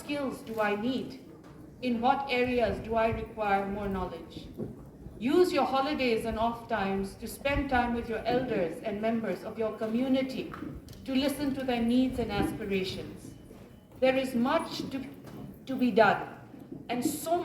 do I need? In what areas do I require more knowledge? Use your holidays and off times to spend time with your elders and members of your community to listen to their needs and aspirations. There is much to be done, and so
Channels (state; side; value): identical; both; correlation 1.00